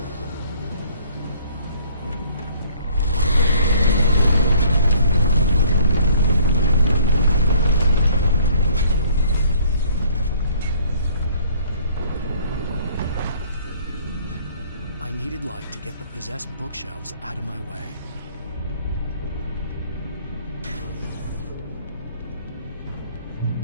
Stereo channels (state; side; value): inverted; both; correlation -0.57